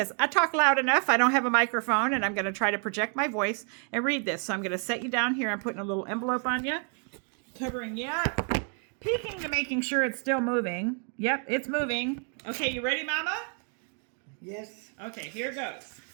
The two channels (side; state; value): left; quieter; 40.0 dB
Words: I talk loud enough. I don't have a microphone, and I'm going to try to project my voice and read this. So I'm going to set you down here. I'm putting a little envelope on you, covering you up, peeking to making sure it's still moving. Yep, it's moving. Okay, you ready, Mama? Yes. Okay, here goes.